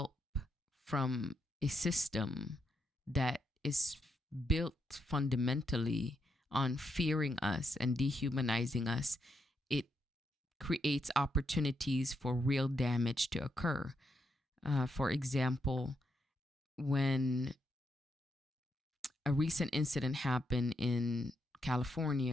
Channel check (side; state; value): both; normal; correlation 0.81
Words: from a system that is built fundamentally on fearing us and dehumanizing us, it creates opportunities for real damage to occur. For example, when a recent incident happened in